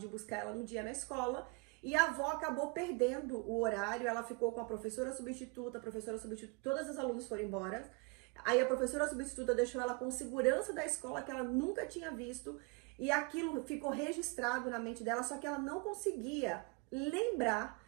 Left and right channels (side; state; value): left; quieter; 30.0 dB